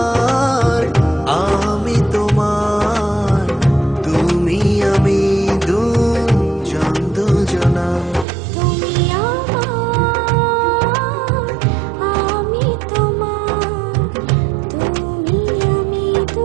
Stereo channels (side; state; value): left; drops out; at 8.2 s